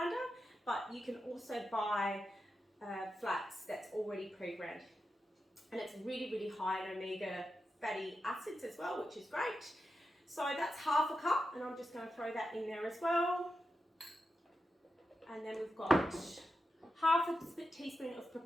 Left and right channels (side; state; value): both; normal; correlation 0.89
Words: but you can also buy flax that's already pre-ground. And it's really, really high in omega fatty acids as well, which is great. So that's half a cup, and I'm just going to throw that in there as well. And then we've got half a teaspoon of